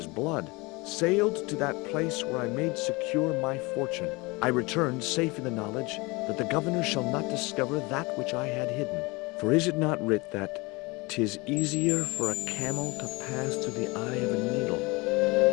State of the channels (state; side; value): quieter; right; 25.2 dB